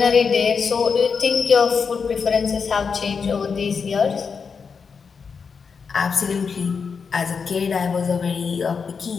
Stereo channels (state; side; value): quieter; right; 5.7 dB